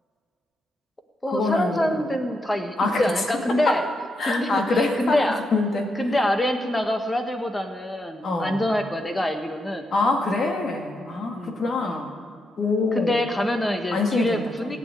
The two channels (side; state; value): both; normal; correlation 0.82